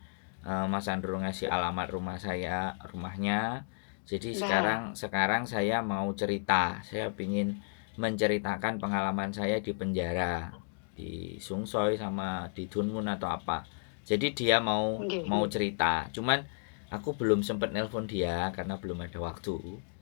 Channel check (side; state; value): right; silent; digital silence